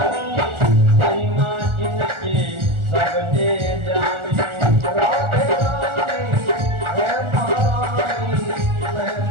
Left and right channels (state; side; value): late; left; 1.4 ms